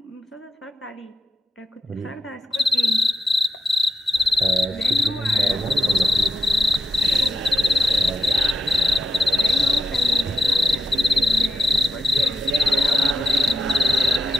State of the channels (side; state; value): both; normal; correlation 0.89